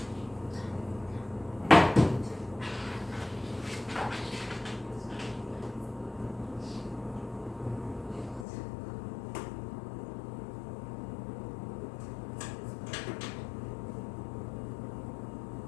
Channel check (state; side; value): drops out; right; at 8.5 s